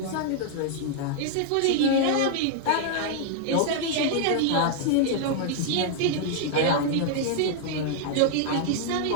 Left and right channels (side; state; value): both; different; correlation -0.01